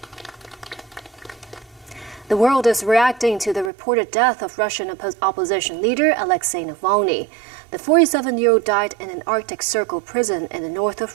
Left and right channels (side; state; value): left; drops out; at 3.7 s